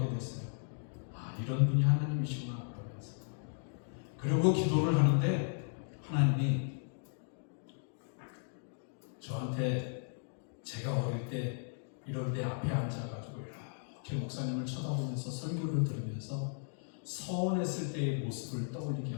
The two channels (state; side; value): silent; right; digital silence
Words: 됐어요. 이런 분이 하나님이시구나 그러면서. 그리고 기도를 하는데 하나님이 저한테, 제가 어릴 때 이런 데 앞에 앉아가지고 이렇게 목사님을 쳐다보면서 설교를 들으면서 서원했을 때의 모습을 떠올리게